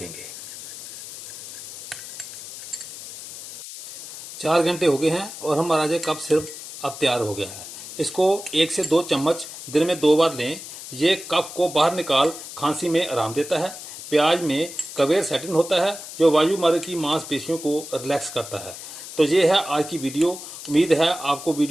4 घंटे हो गए हैं और हमारा जो कफ सिरप अब तैयार हो गया है। इसको 1 से 2 चम्मच दिन में 2 बार लें। ये कफ को बाहर निकाल खांसी में आराम देता है। प्याज में क्वेरसेटिन होता है जो वायुमार्ग की मांसपेशियों को रिलैक्स करता है। तो ये है आज की वीडियो। उम्मीद है आपको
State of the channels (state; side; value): noise; left; hiss, 12 dB below the sound